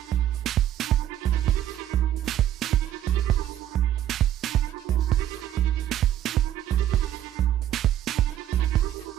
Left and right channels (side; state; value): left; quieter; 11.7 dB